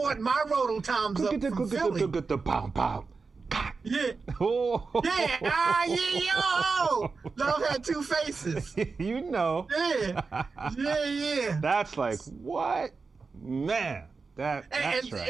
my rototoms up from Philly. Yeah. Oh. Love had 2 faces. Yeah. That's like what, man. That's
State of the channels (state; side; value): quieter; left; 4.5 dB